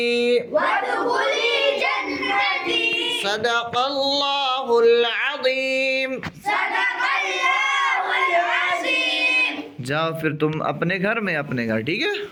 صدق الله العظيم जाओ फिर तुम अपने घर, ठीक है।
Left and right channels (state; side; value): identical; both; correlation 1.00